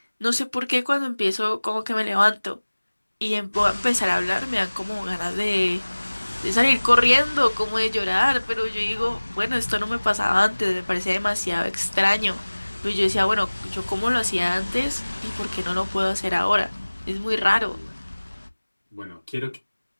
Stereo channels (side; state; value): both; inverted; correlation -1.00